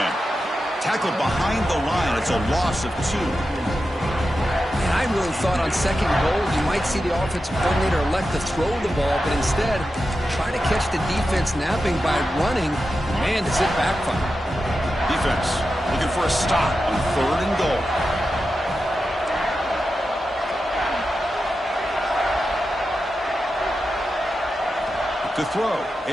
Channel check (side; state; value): both; normal; correlation 0.90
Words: Tackled behind the line. It's a loss of 2. And I really thought on 2nd goal you might see the offensive coordinator elect to throw the ball, but instead try to catch the defense napping by running. Man, does it backfire. Defense looking for a stop on 3rd and goal. To throw,